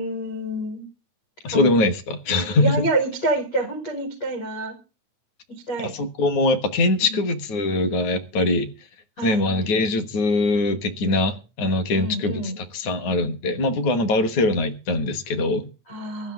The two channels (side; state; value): right; late; 9.4 ms